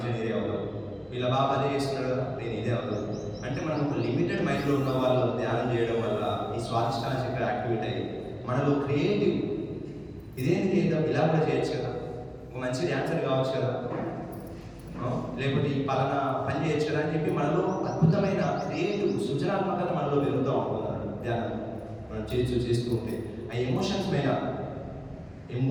అవ్వదు, వీళ్ళ బాబా అదే చేస్తున్నారు కదా, నేను ఇదే అవ్వదు అంటే మనం ఒక లిమిటెడ్ మైండ్లో ఉన్న వాళ్ళు ధ్యానం చేయడం వల్ల ఈ స్వాదిష్టాన చక్ర యాక్టివేట్ అయ్యి మనలో క్రియేటివ్ ఇదేంటి చేద్దాం, ఇలా కూడా చేయొచ్చు కదా, ఒక మంచి డ్యాన్సర్ కావచ్చు కదా, లేకపోతే ఈ పలానా పని చేయొచ్చు కదా అని చెప్పి మనలో అద్భుతమైన క్రియేటివ్ సృజనాత్మకత మనలో పెరుగుతూ ఉంటున్నారు ధ్యానం మనం చేస్తూ ఉంటే. ఆ ఎమోషన్స్ పైన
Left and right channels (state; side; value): identical; both; correlation 1.00